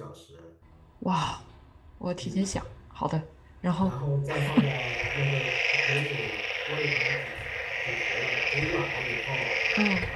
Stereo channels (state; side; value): identical; both; correlation 1.00